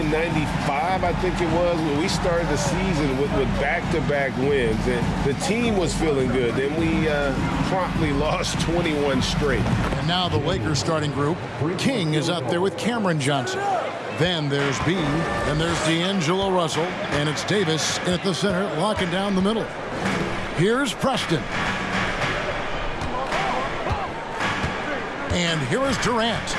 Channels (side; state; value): both; identical; correlation 1.00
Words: '95, I think it was, when we started the season with back-to-back wins, and the team was feeling good. Then we promptly lost 21 straight. And now the Lakers starting group. King is out there with Cameron Johnson. Then there's B, then there's D'Angelo Russell, and it's Davis at the center, locking down the middle. Here's Preston. And here is Durant.